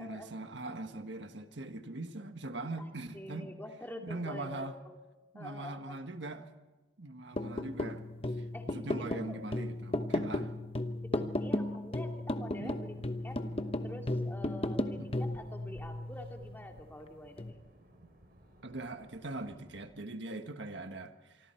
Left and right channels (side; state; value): both; normal; correlation 0.68